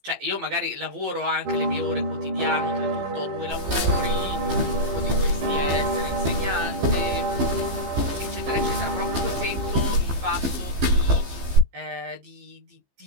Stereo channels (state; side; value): late; left; 15 ms